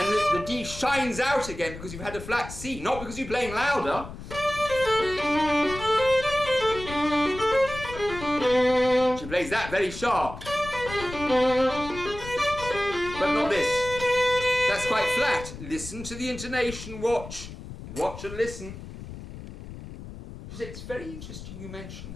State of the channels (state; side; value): noise; left; rumble, 12 dB below the sound